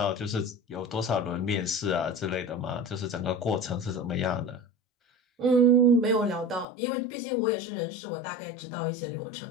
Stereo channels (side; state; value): right; drops out; at 6.7 s